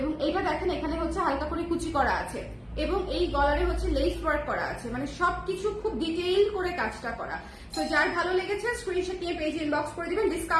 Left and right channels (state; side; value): identical; both; correlation 1.00